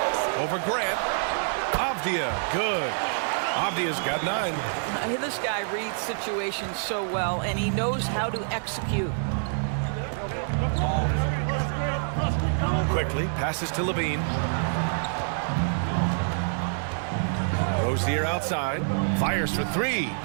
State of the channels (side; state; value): left; silent; digital silence